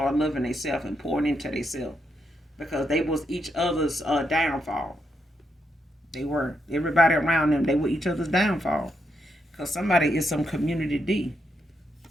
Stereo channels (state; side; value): normal; both; correlation 0.80